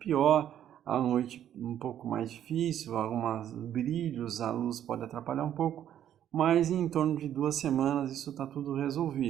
à noite um pouco mais difícil, alguns brilhos, a luz pode atrapalhar um pouco, mas em torno de 2 semanas isso está tudo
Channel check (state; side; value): quieter; left; 10.6 dB